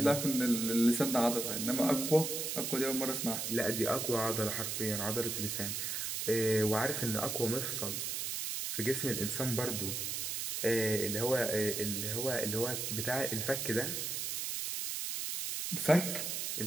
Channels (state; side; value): noise; right; hiss, 2 dB below the sound